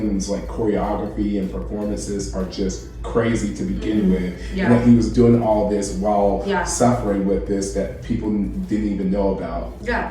like choreography and performances are just crazy to begin with. And that he was doing all this while suffering with this that people didn't even know about.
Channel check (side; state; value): both; identical; correlation 1.00